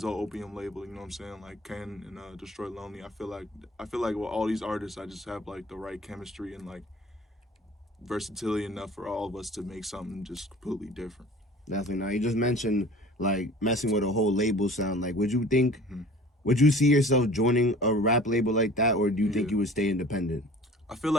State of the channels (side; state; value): both; normal; correlation 0.45